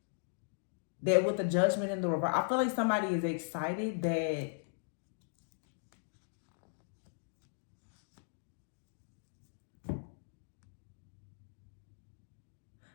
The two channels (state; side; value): silent; right; digital silence